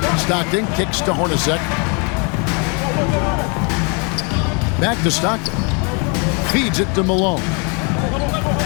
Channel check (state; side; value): quieter; right; 34.3 dB